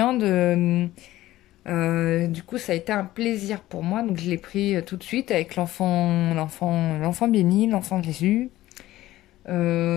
Du coup, ça a été un plaisir pour moi. Donc, je l'ai pris tout de suite avec l'enfant béni, l'enfant Jésus.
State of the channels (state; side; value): quieter; right; 15.6 dB